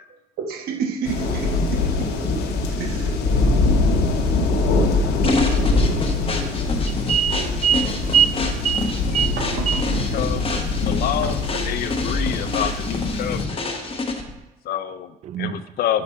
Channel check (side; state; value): both; normal; correlation 0.47